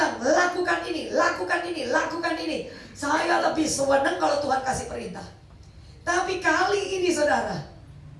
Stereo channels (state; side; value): identical; both; correlation 1.00